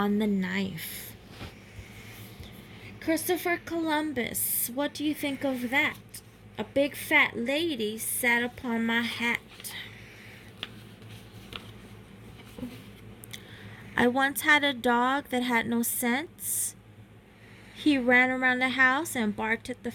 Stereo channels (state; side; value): identical; both; correlation 1.00